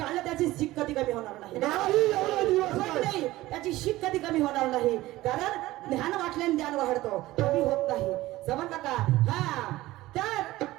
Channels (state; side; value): quieter; left; 17.4 dB